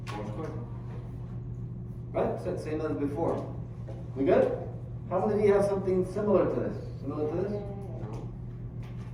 4 square. Right? So same as before. We good? How many of you have something similar to this? Similar to this?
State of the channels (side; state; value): both; identical; correlation 1.00